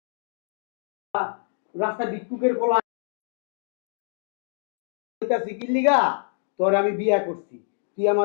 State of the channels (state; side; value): silent; right; digital silence